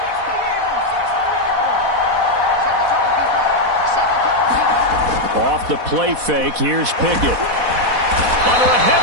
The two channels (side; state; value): left; late; 4.1 ms